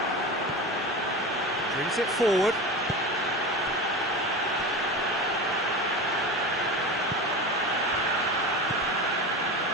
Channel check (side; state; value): both; normal; correlation 0.27